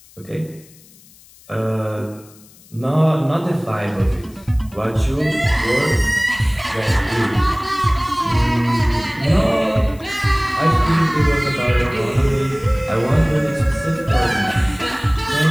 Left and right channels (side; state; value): left; noise; hiss, 25 dB below the sound